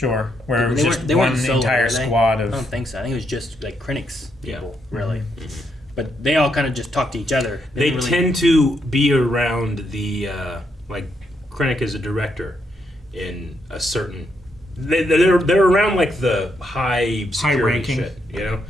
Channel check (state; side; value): normal; both; correlation 0.78